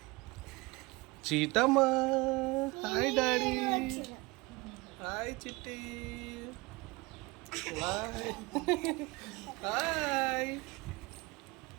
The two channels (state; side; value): quieter; left; 24.1 dB